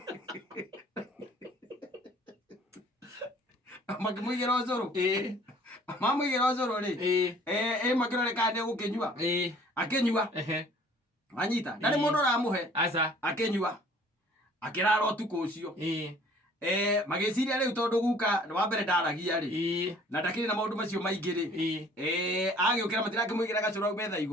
makĩmũigĩra ũcũrũ mamũigĩra ũcũrũ rĩ makĩrore kana nĩegũkĩnyua akĩnyua anyita ndarĩ mũndũ ũramũhe akĩnyua akĩrara ũtukũ ũcio magĩciria rĩu tondũ guka wa mbere ndaragia rĩ na ndakĩrĩ na maũndũ macio maingĩ rĩ agĩũkĩra matirakĩmũigĩra gacũrũ hau metha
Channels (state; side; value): normal; both; correlation 0.54